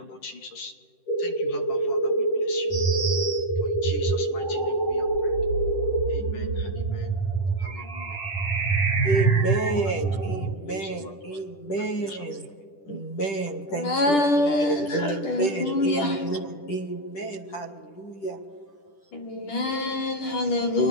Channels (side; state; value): right; late; 10 ms